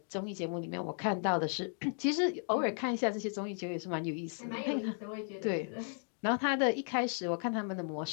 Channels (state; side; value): silent; right; 54 dB below the other